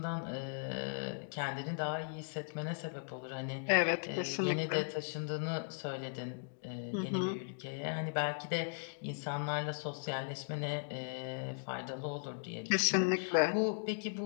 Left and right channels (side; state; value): right; silent; digital silence